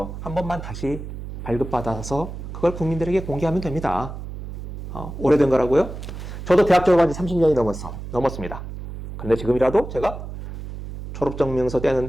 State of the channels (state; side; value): noise; right; hum, 9 dB below the sound